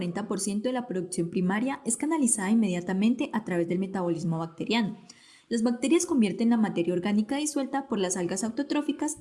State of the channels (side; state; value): both; identical; correlation 1.00